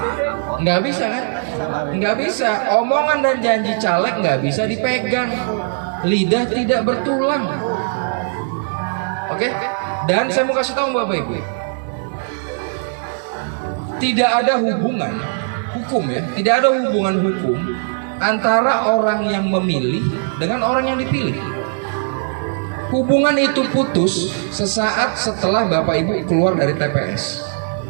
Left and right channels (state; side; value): silent; left; digital silence